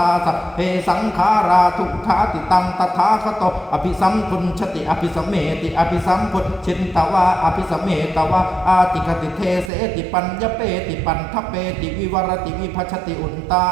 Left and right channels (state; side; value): drops out; left; at 9.7 s